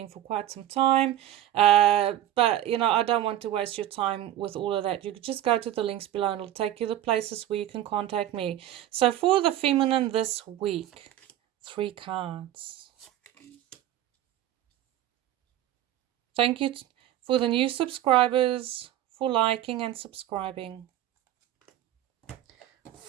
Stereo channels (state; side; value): quieter; left; 12.7 dB